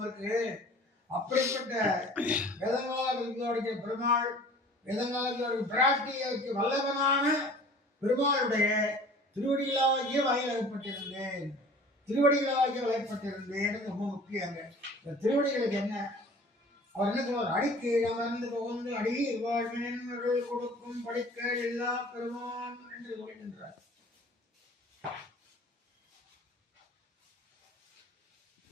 இருக்கு. அப்படிப்பட்ட வேதங்களால் பிரதிபாதிக்கிற பெருமாள், வேதங்களால் பிராட்டிக்கு வல்லவனான பெருமாளுடைய திருவடிகளாகிய வயலகப்பட்டிருந்தேன். திருவடிகளாகிய வயப்பட்டிருந்தேன் ரொம்ப முக்கியங்க. இந்த திருவடிகளுக்கு என்ன அவர் என்ன சொல்வார்? அடிக்கு அமர்ந்து புகுந்து அடி வாழ்வின் கொடுக்கும் படிக்க எல்லா பெருமான் என்று சொல்கின்றார்.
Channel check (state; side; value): normal; both; correlation 0.46